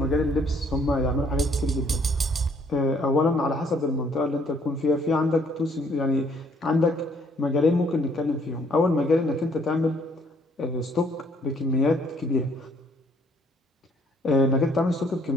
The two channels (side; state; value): both; normal; correlation 0.64